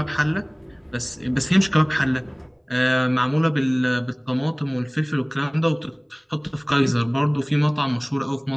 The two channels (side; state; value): both; identical; correlation 1.00